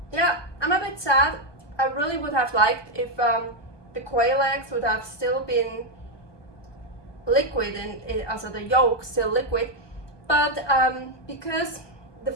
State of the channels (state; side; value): late; right; 1.2 ms